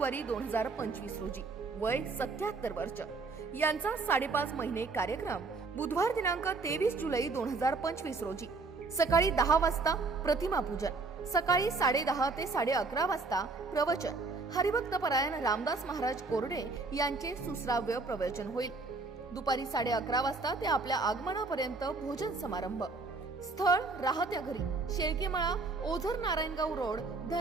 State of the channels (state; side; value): quieter; left; 3.9 dB